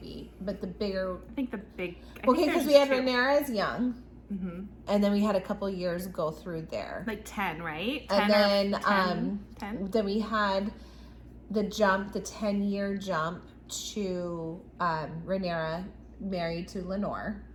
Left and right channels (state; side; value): identical; both; correlation 1.00